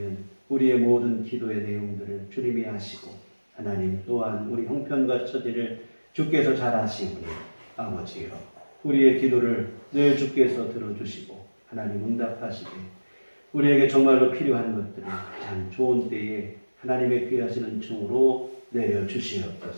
우리의 모든 기도의 내용들을 주님이 하시고 하나님 또한 우리 형편과 처지를 주께서 잘 아시오니 아버지여 우리의 기도를 늘 주께서 들어주시고 하나님 응답하시되 우리에게 정말로 필요한 것들을 가장 좋은 때에 하나님의 귀하시는 종으로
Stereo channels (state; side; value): inverted; both; correlation -1.00